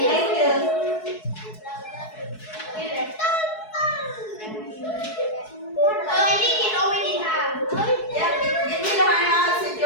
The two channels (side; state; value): right; late; 4.7 ms